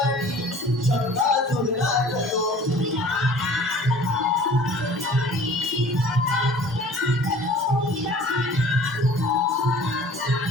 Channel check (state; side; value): normal; both; correlation 0.48